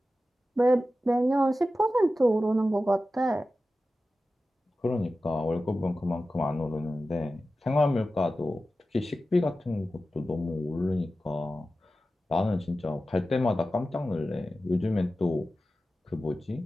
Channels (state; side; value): normal; both; correlation 0.94